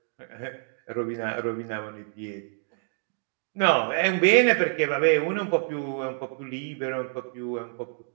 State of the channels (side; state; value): left; silent; 60 dB below the other